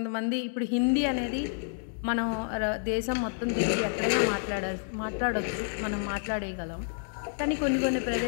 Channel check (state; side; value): silent; right; digital silence